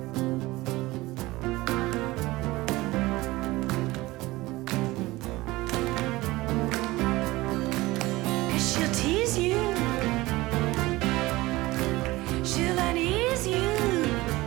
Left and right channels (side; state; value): left; quieter; 19.7 dB